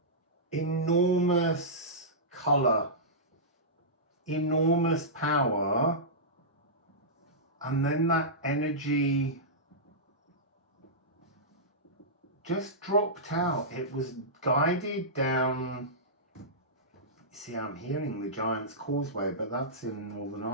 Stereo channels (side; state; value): both; normal; correlation -0.15